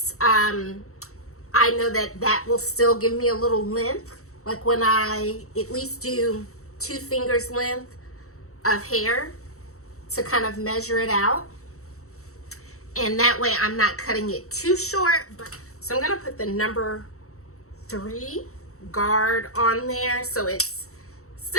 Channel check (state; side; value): late; right; 0.64 ms